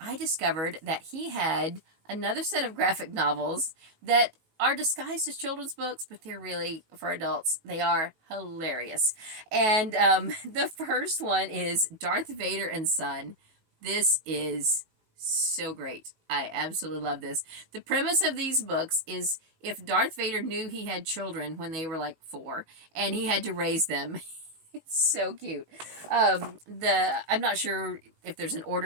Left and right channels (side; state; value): left; late; 18 ms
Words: discovered that he had another set of graphic novels that are disguised as children's books, but they're really for adults. They are hilarious. And the first one is Darth Vader and Son. This is so great. I absolutely love this. The premise of these books is if Darth Vader knew he had children when they were like 4 and he had to raise them. It's so cute. I'm not sure if there's an